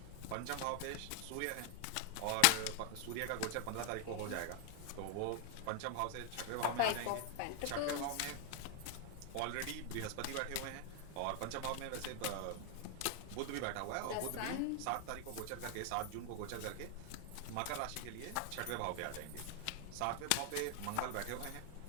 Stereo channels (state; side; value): different; both; correlation 0.00